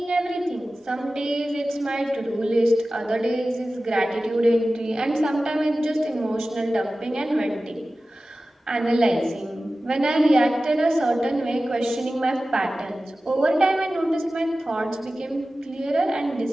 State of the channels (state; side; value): normal; both; correlation 0.95